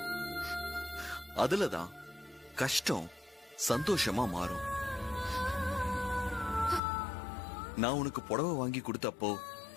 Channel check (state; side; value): drops out; right; at 6.8 s